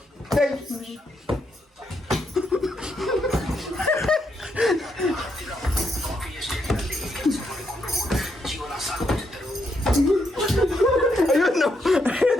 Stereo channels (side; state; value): both; normal; correlation 0.78